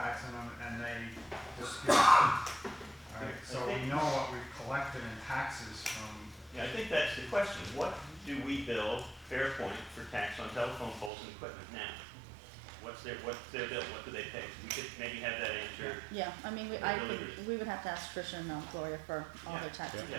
them and they dispute. Alright, so we know what we've collected in taxes from. Yeah, I think that's the question. What do we bill Fairpoint for tax on telephone poles and equipment now? What's their bill? What do they pay? We could maybe have that answer. yeah, we would have to ask Tricia and Gloria for all their tax Yeah,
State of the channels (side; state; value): left; drops out; at 11.1 s